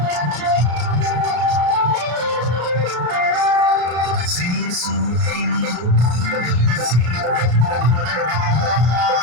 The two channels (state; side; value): late; left; 33 ms